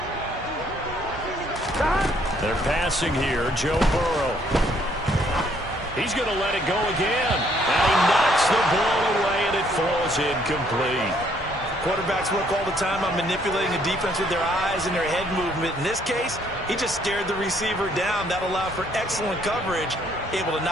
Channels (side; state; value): both; normal; correlation 0.66